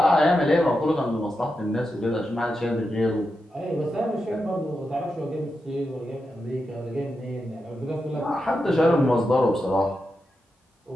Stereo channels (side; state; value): both; normal; correlation 0.88